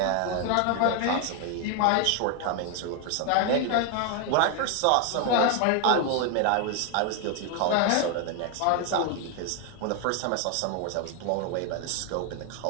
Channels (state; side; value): different; both; correlation 0.01